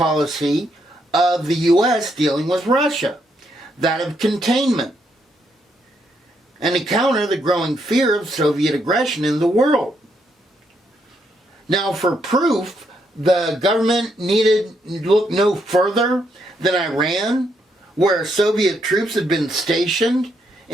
of the U.S. dealing with Russia, that of containment, and to counter the growing fear of Soviet aggression in the world. Now, for proof, the government needed look no further than Iran, where Soviet troops had been stationed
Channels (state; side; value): normal; both; correlation 0.76